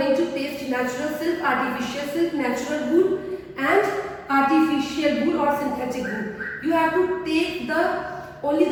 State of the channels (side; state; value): both; identical; correlation 1.00